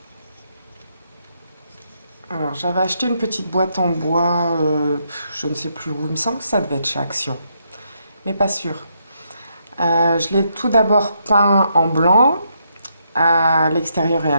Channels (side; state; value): both; inverted; correlation -0.77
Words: Alors j'avais acheté une petite boîte en bois, je ne sais plus où, il me semble que ça devait être chez Action, mais pas sûr. Je l'ai tout d'abord peint en blanc, à l'extérieur et à